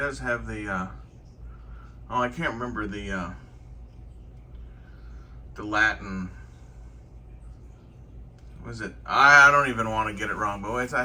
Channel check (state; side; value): identical; both; correlation 1.00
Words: have the Oh, I can't remember the Latin. Was it? I don't even want to get it wrong, but I